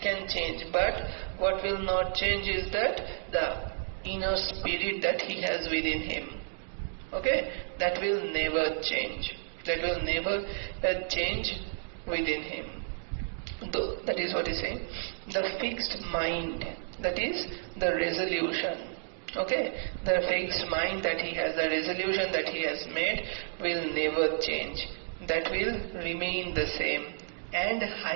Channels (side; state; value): left; silent; digital silence